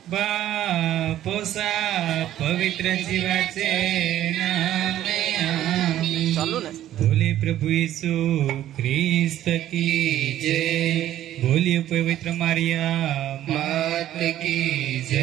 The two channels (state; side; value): quieter; left; 12.6 dB